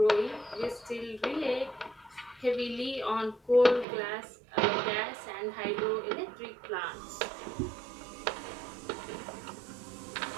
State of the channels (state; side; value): drops out; left; at 3.9 s